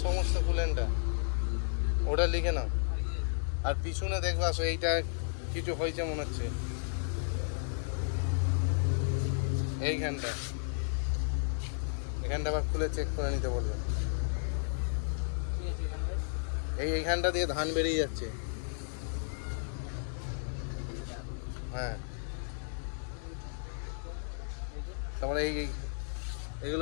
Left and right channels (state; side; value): silent; right; digital silence